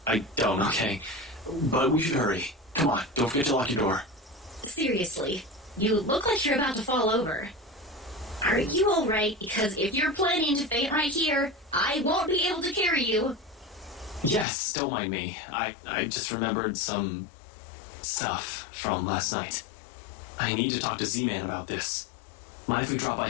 okay. But we should hurry. Come on, don't forget to lock your door. Seriously, you look like you're about to fall over. Are you alright? Because if you're planning to faint right here, I won't be able to carry you. Yes, don't mind me. I just remembered some stuff from last night. I need to talk to Z-Man about this. Mind if we drop by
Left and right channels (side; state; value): right; drops out; at 14.5 s